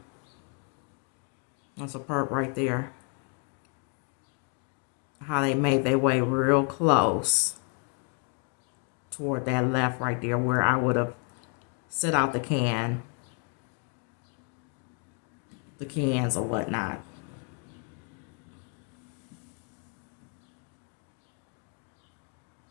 That's a perp right there. How they made their way real close toward that left right there where I would have set out the cans or whatnot.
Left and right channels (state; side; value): quieter; right; 38.3 dB